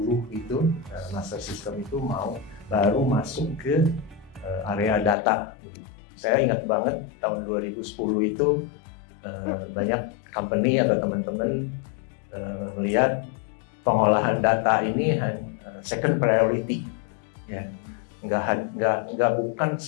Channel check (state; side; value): drops out; right; at 5.2 s